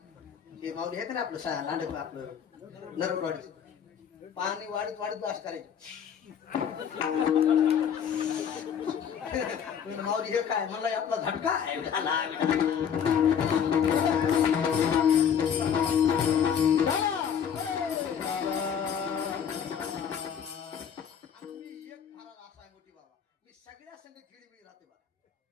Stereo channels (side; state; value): right; quieter; 8.0 dB